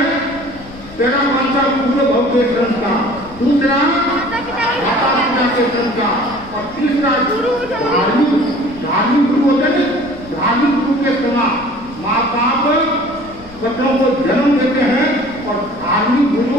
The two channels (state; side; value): noise; left; rumble, 20 dB below the sound